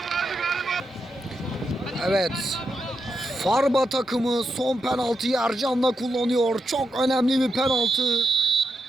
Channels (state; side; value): normal; both; correlation 0.86